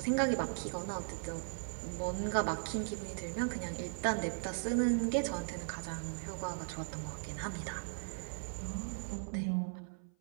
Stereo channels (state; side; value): silent; left; 52 dB below the other